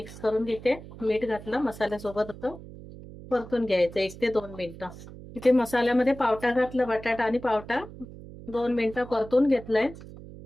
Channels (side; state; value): right; noise; hum, 15 dB below the sound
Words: करून घेते. मीठ घातलं मसाल्यासोबत असं परतून घ्यायचं 1 ते 2 मिनिटं. इथे मसाल्यामध्ये पावटा घातला, बटाटा आणि पावटा 2 मिनिटं परतून घेतलंय.